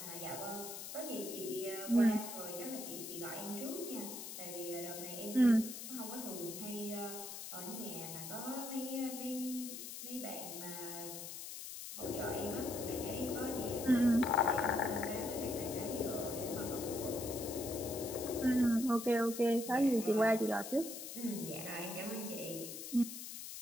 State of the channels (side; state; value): left; noise; hiss, 8 dB below the sound